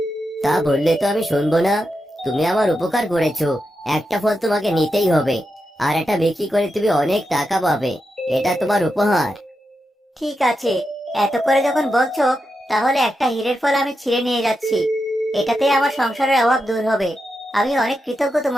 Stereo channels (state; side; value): normal; both; correlation 0.87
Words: তা বললে তো আমি শুনবো না। তুমি আমার উপকার করেছো, একটা ফল তোমাকে নিতেই হবে। আর এটা বিক্রি করে তুমি অনেক টাকা পাবে। এটা তোমার উপহার। ঠিক আছে, এত করে যখন বলছো, তাহলে একটা হীরের ফল আমি ছিঁড়ে নিয়ে যাচ্ছি। এটাতে আমার সংসারের অভাব দূর হবে। আমি অনেক কৃতজ্ঞ